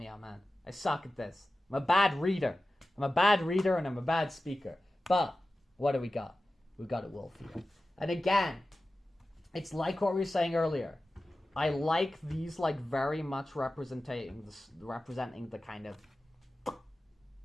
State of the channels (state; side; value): normal; both; correlation 0.95